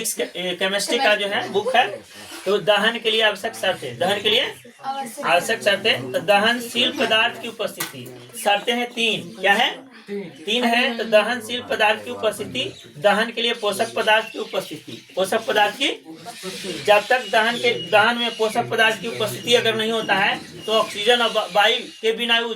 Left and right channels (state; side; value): identical; both; correlation 1.00